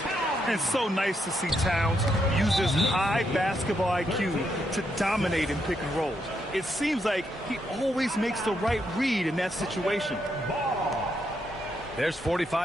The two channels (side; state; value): both; normal; correlation 0.79